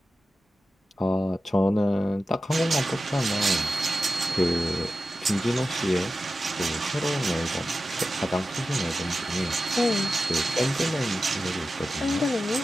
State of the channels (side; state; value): both; normal; correlation 0.93